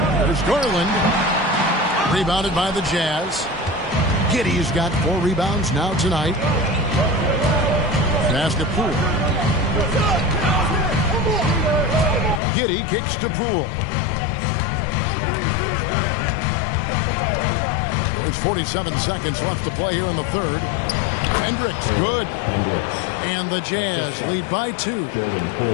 There's Garland. Rebounded by the Jazz. Giddey's got 4 rebounds now tonight. Pass to Poole. Giddey kicks to Poole. There's 47 seconds left to play here in the third. Hendricks, good. And the Jazz lead by 2.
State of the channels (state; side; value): drops out; right; at 12.4 s